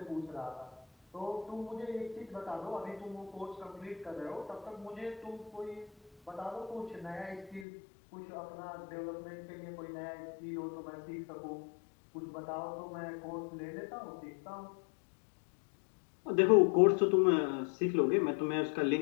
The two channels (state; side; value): drops out; right; at 7.7 s